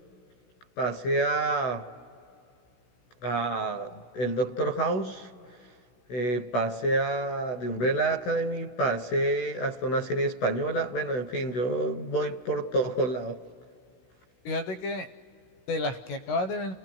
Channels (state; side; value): late; right; 16 ms